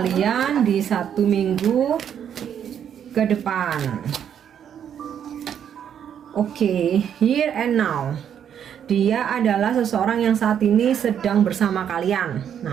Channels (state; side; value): quieter; left; 8.9 dB